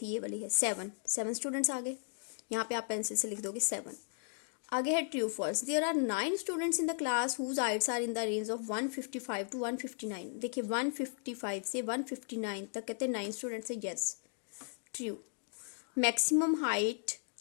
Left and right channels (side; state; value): right; silent; digital silence